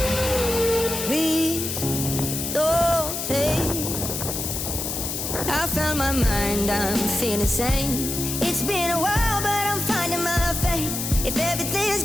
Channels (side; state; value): left; noise; hiss, 3 dB below the sound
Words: Please don't take. I found my mind, I'm feeling sane. It's been a while, but I'm finding my faith. If everything is